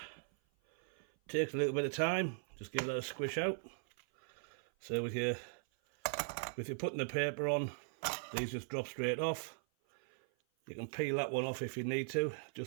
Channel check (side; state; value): left; silent; 52 dB below the other